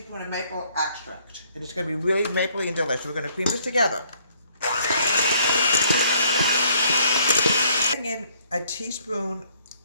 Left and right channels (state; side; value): inverted; both; correlation -0.63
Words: of maple extract. And it's going to be really mapley and delicious. We're going to cream this together. Adding in a teaspoon